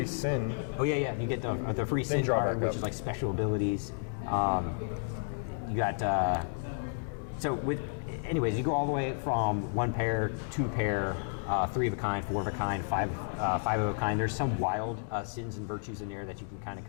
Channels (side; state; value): right; silent; digital silence